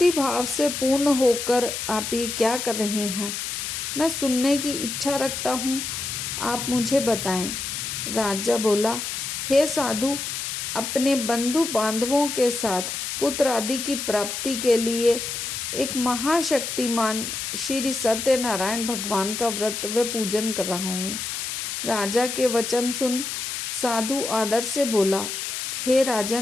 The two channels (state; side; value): noise; left; hiss, 4 dB below the sound